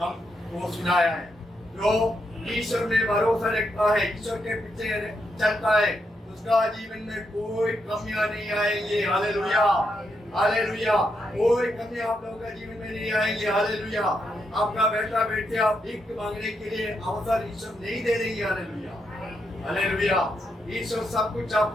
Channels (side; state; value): both; normal; correlation 0.81